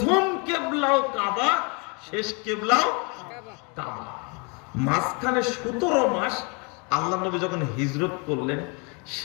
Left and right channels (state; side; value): quieter; right; 33.0 dB